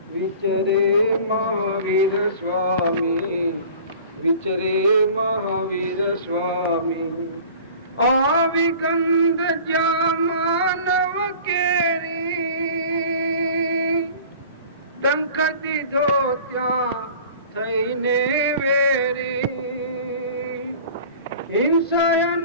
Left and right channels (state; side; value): inverted; both; correlation -0.43